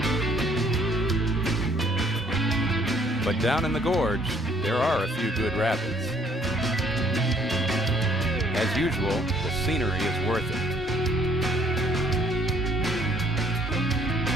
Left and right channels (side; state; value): both; normal; correlation 0.63